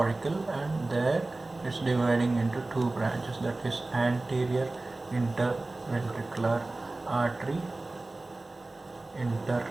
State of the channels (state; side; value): quieter; left; 3.0 dB